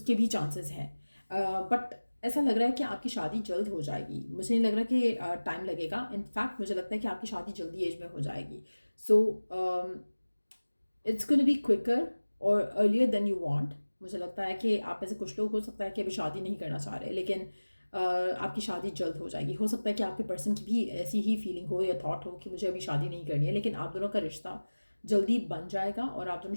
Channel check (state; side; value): inverted; both; correlation -1.00